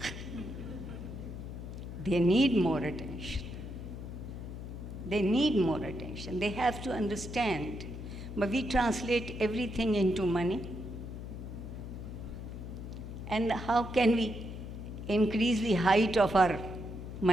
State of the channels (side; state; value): left; noise; hum, 9 dB below the sound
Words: They need more attention. They need more attention. They have to understand. But we translate everything into money. And how can we increase the height of our